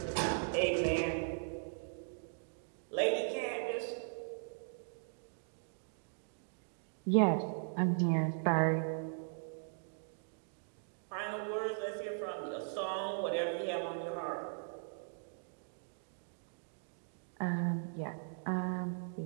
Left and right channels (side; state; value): left; silent; digital silence